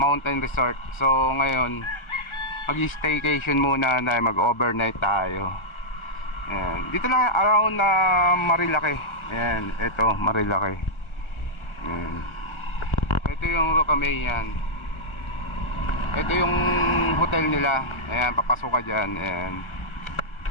Mountain Resort. So, ngayon mag-staycation muna na mag-overnight tayo. Ayan, dito lang around na Marilaki. Ayan, ito Marilaki. Ayan. Ito yung Rocamay yan. Ito yung hotel nila. Ayan, papasok ka dyan. Ayan,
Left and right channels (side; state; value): right; late; 1.4 ms